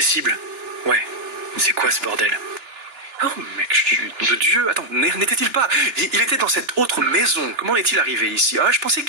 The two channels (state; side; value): late; left; 2.9 ms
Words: cibles. Ouais. C'est quoi ce bordel? Oh mec, chut de Dieu. Attends, n'était-il pas... Il était dans cette autre maison. Comment est-il arrivé ici? Ah, je pensais